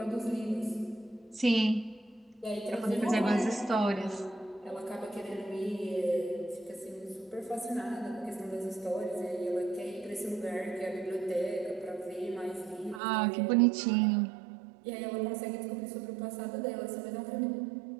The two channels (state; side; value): drops out; left; at 13.0 s